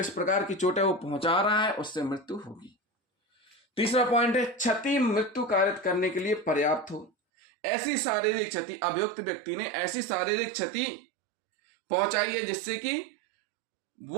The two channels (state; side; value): drops out; left; at 7.1 s